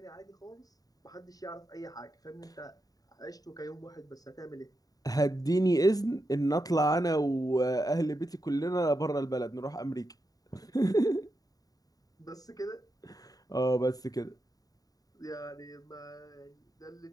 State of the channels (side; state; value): right; late; 0.18 ms